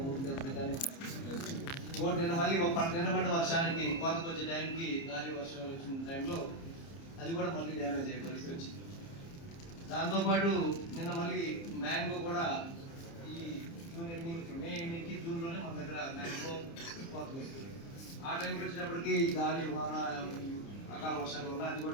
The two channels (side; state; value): right; late; 30 ms